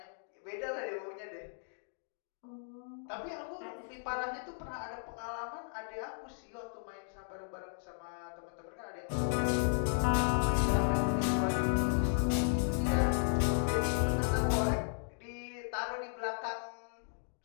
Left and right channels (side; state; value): right; silent; digital silence